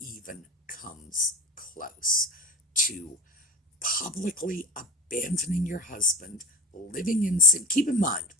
comes close to publicly abandoning your husband, living in sin. Keep in mind,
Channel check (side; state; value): both; normal; correlation 0.32